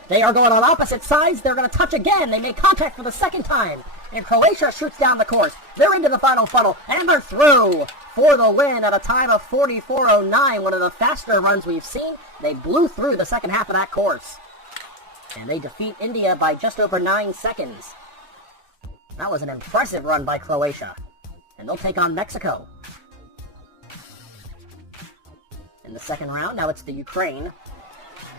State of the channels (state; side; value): late; left; 3.4 ms